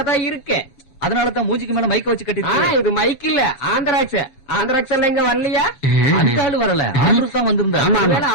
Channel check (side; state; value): right; late; 7.5 ms